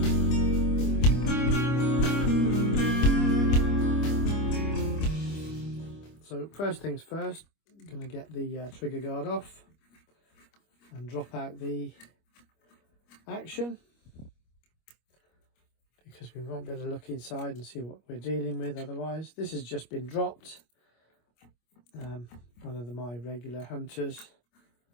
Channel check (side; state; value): right; late; 25 ms